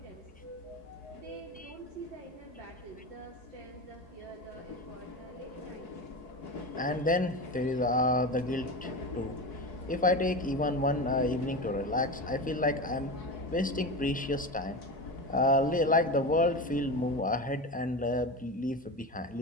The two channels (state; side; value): normal; both; correlation 0.24